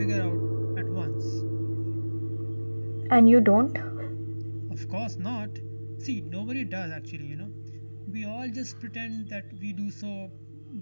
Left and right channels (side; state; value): both; inverted; correlation -1.00